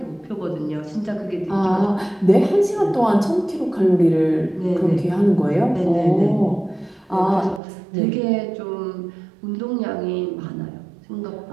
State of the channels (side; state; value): left; drops out; at 7.6 s